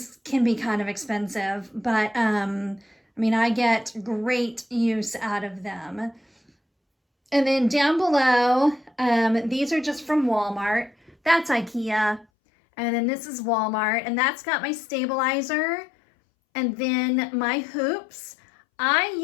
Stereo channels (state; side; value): drops out; right; at 12.2 s